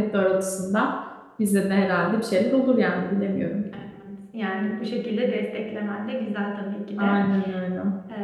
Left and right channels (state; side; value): identical; both; correlation 1.00